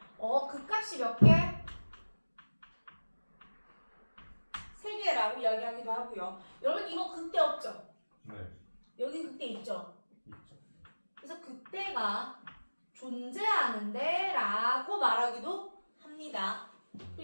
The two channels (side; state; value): both; inverted; correlation -1.00